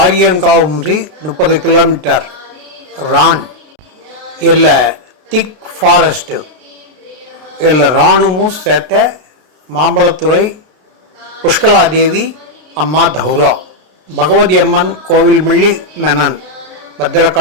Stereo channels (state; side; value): late; left; 33 ms